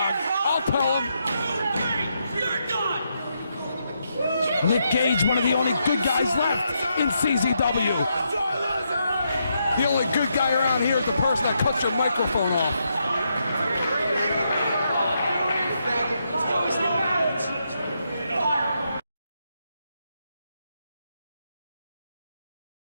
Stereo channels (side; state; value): both; inverted; correlation -0.80